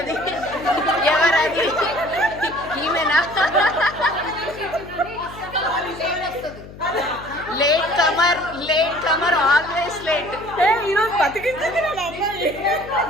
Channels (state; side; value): noise; left; hum, 16 dB below the sound